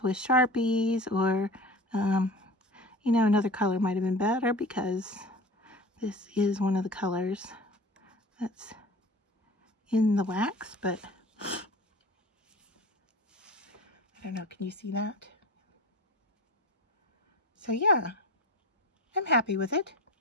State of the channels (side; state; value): both; normal; correlation 0.36